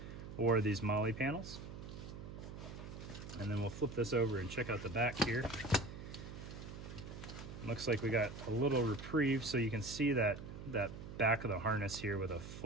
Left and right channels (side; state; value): right; noise; hum, 10 dB below the sound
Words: or these MOLLE panels. And then we'll flip this over and check out the back here. Looks like we got a little reprieve, so you can see that back of the harness here with a